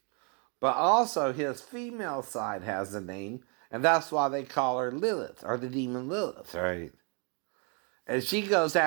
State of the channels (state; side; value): quieter; left; 36.5 dB